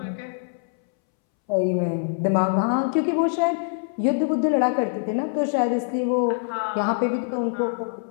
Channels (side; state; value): right; silent; 63 dB below the other